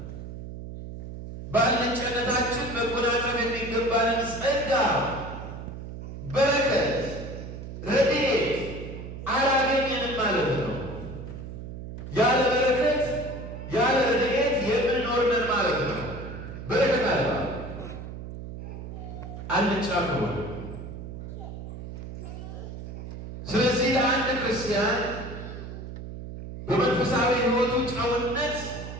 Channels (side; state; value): right; noise; hum, 10 dB below the sound